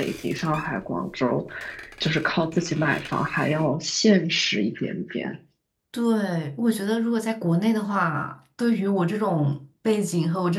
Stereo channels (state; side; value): identical; both; correlation 1.00